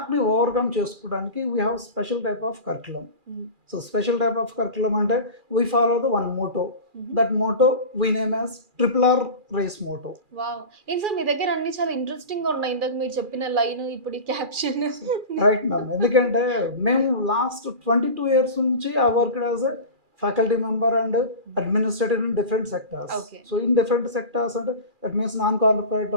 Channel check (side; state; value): left; late; 2.4 ms